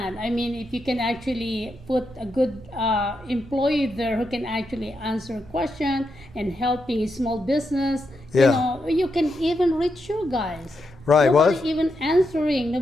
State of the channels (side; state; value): right; noise; rumble, 21 dB below the sound